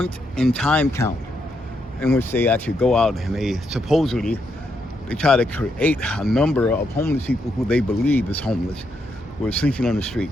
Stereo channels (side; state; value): both; normal; correlation 0.79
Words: in time count, in which they actually go out and they try to create a number of homeless people who they believe is homeless, who are sleeping on the street.